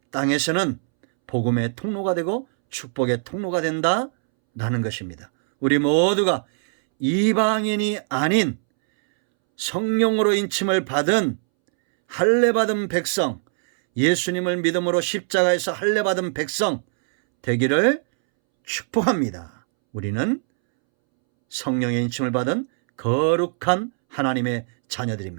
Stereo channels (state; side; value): silent; left; 64 dB below the other